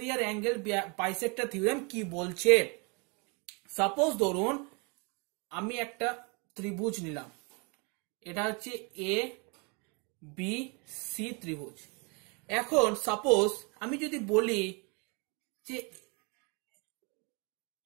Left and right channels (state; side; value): quieter; left; 31.8 dB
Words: অ্যাঙ্গেল বাইসেক্টর থিওরেম কি বলছে। সাপোজ ধরুন আমি একটা ত্রিভুজ নিলাম, এটা হচ্ছে এ বি সি ত্রিভুজ। এখন সাপোজ আমি যদি বলি যে